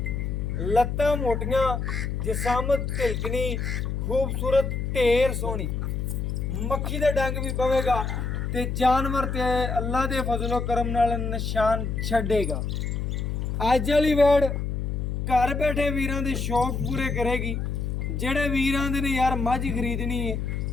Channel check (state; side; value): noise; left; hum, 2 dB below the sound